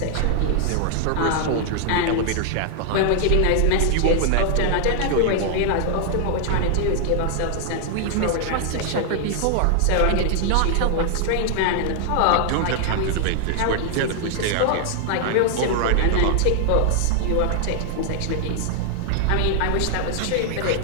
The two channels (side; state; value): both; different; correlation 0.00